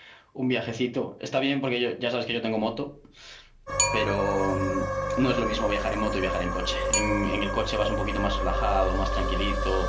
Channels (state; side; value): identical; both; correlation 1.00